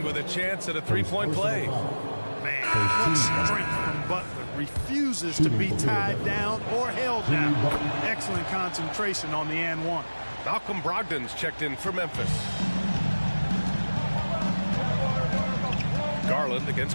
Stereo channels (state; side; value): inverted; both; correlation -1.00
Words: with a chance at a three-point play. Man, what strength from Butler. Refuses to be tied down or held down. Excellent concentration on the and one. Malcolm Brogdon's checked in for Memphis. Garland